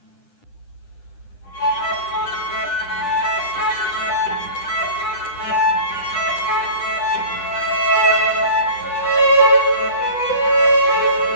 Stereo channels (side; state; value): right; late; 10 ms